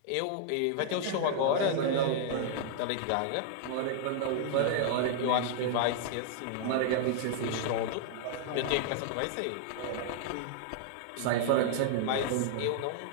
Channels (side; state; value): both; different; correlation -0.01